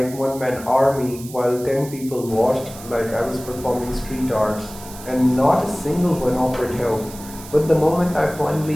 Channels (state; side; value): noise; right; hiss, 16 dB below the sound